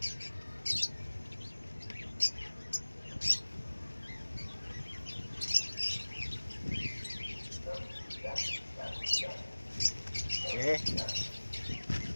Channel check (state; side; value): inverted; both; correlation -1.00